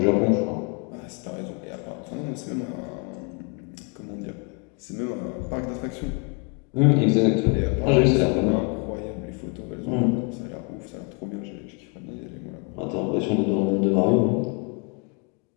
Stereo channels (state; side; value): quieter; right; 34.2 dB